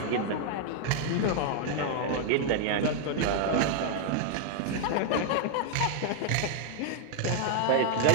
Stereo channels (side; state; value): both; different; correlation 0.00